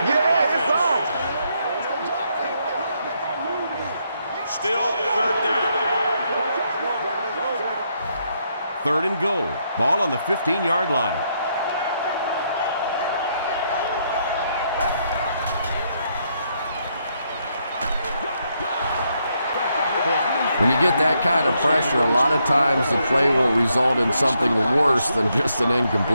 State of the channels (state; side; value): inverted; both; correlation -0.76